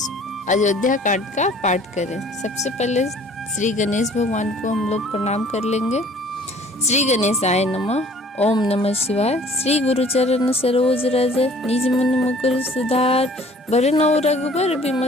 अयोध्या कांड का पाठ करें। सबसे पहले श्री गणेश भगवान को हम लोग प्रणाम कर लेंगे। श्री गणेशाय नमः। ओम नमः शिवाय। श्री गुरु चरण सरोज रज निज मुनि मुकुर सुधार, बरनौ रघुबर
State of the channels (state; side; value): normal; both; correlation 0.53